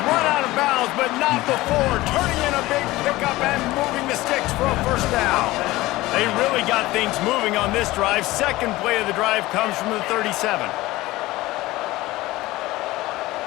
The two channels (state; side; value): quieter; right; 18.5 dB